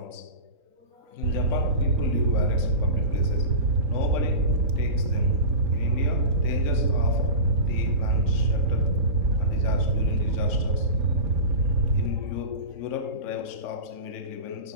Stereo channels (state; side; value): late; left; 3.8 ms